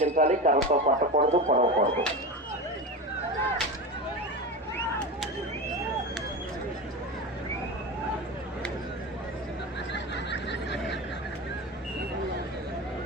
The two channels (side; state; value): both; normal; correlation 0.24